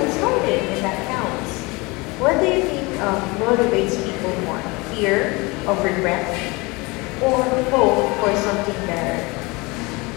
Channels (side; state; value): right; quieter; 25.3 dB